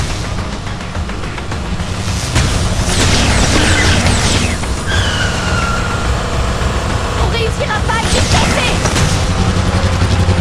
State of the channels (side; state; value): both; identical; correlation 1.00